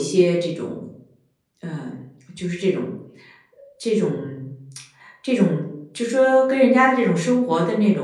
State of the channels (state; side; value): identical; both; correlation 1.00